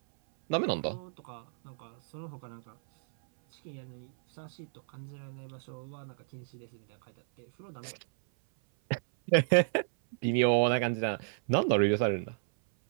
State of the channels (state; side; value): silent; left; 57 dB below the other